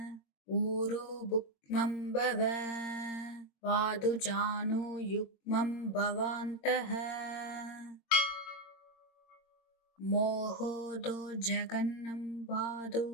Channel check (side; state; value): right; late; 22 ms